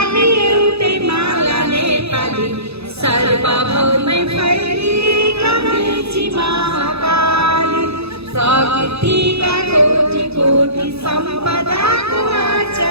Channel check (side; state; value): left; late; 0.79 ms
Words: एउटै माला नेपाली, सर्वभौमै फैलिएका मेची महाकाली, प्रकृतिका कोटि कोटि सम्पदाको